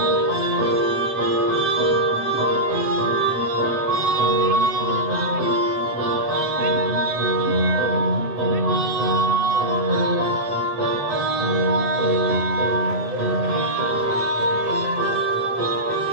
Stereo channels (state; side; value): late; left; 7.9 ms